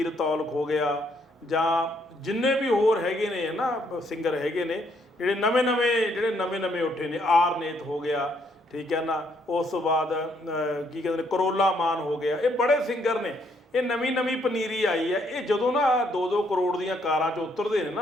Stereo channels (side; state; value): both; normal; correlation 0.71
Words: ਔਲਖ ਹੋ ਗਿਆ, ਜਾਂ ਜਿੰਨੇ ਵੀ ਹੋਰ ਹੈਗੇ ਨੇ ਨਾ ਸਿੰਗਰ ਹੈਗੇ ਨੇ ਜਿਹੜੇ ਨਵੇਂ ਉੱਠੇ ਨੇ, ਆਰਨੇਤ ਹੋ ਗਿਆ, ਠੀਕ ਹੈ ਨਾ, ਉਸ ਤੋਂ ਬਾਅਦ ਕੀ ਕਹਿੰਦੇ ਨੇ ਕਰੋਲਾ ਮਾਨ ਹੋ ਗਿਆ, ਇਹ ਬੜੇ ਸਿੰਗਰ ਨੇ। ਇਹ ਨਵੀਂ ਪਨੀਰੀ ਆਈ ਹੈ। ਇਹ ਜਦੋਂ ਨਾ 2-2 ਕਰੋੜ ਦੀਆਂ ਕਾਰਾਂ 'ਚ ਉਤਰਦੇ ਨੇ